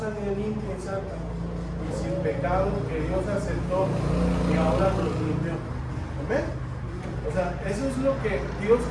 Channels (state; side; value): identical; both; correlation 1.00